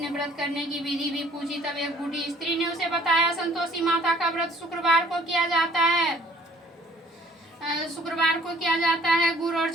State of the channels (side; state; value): both; normal; correlation 0.56